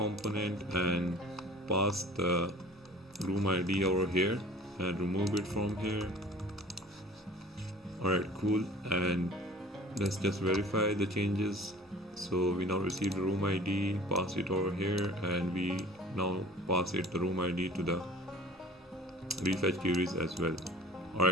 and pass the room ID over here and remove it from here. Alright, cool, and let's just verify the changes. So we now received the room ID, pass it over here, and we now pass it the room ID to the refetch queries as well.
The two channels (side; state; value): both; normal; correlation 0.46